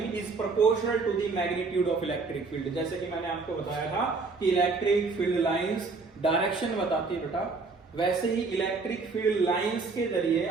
is proportional to the magnitude of electric field. जैसे कि मैंने आपको बताया था कि इलेक्ट्रिक फील्ड लाइंस डायरेक्शन बताती है बेटा, वैसे ही इलेक्ट्रिक फील्ड लाइंस के जरिए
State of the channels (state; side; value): quieter; left; 4.2 dB